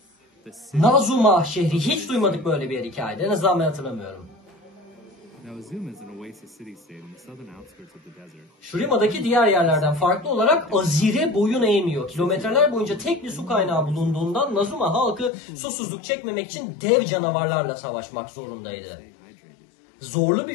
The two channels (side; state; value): right; drops out; at 15.3 s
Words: Nazuma şehri. Hiç duymadık böyle bir hikayede. En azından ben hatırlamıyorum. Shrima'daki diğer yerlerden farklı olarak Azir'e boyun eğmiyor. Kilometreler boyunca tek bir su kaynağı bulunduğundan Nazuma halkı susuzluk çekmemek için dev canavarlarla savaşmak zorundaydı. Zorlu